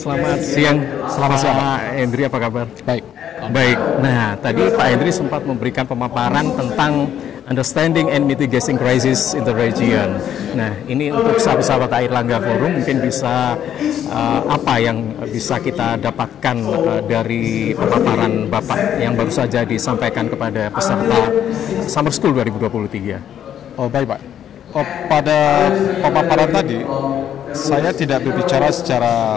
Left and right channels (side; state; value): right; quieter; 10.0 dB